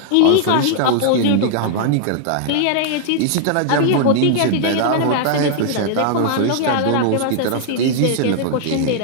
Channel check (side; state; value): both; different; correlation -0.01